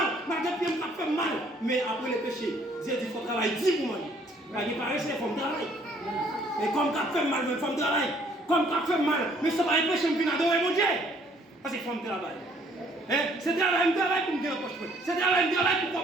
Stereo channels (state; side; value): normal; both; correlation 0.62